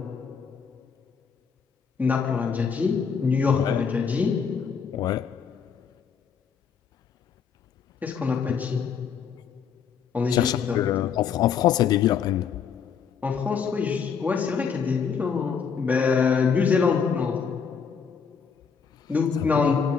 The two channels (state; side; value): quieter; right; 6.6 dB